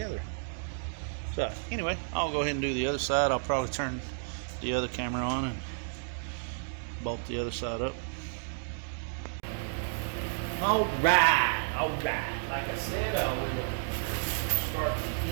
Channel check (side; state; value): left; silent; digital silence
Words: So, anyway, I'll go ahead and do the other side. I'll probably turn the other camera on and bolt the other side up. All right. Like I said, I will start the